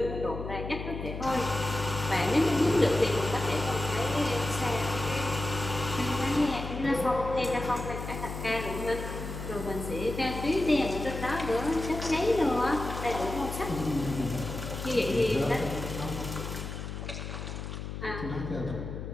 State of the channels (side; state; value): left; noise; hum, 7 dB below the sound